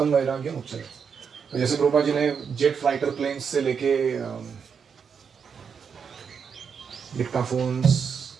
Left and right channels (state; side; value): quieter; left; 6.5 dB